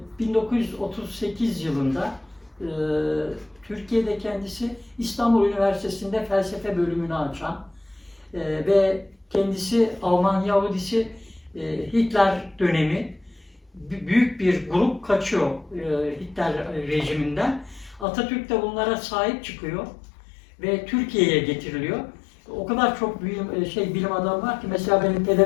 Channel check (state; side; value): drops out; right; at 18.1 s